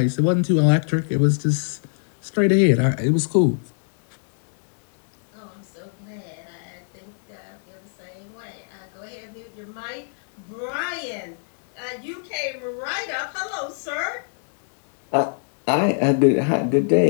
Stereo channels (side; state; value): right; silent; digital silence